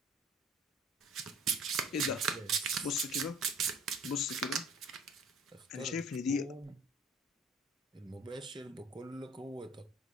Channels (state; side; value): normal; both; correlation 0.49